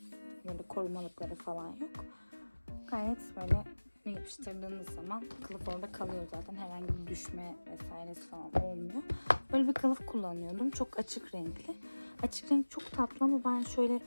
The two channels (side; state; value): both; inverted; correlation -1.00